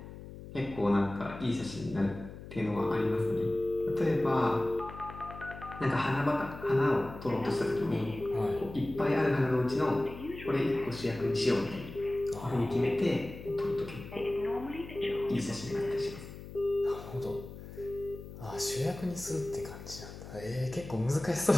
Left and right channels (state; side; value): noise; left; hum, 13 dB below the sound